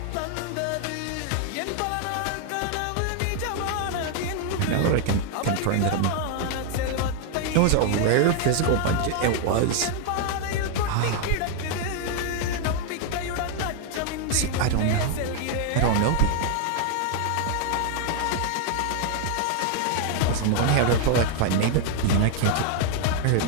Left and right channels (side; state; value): both; different; correlation 0.00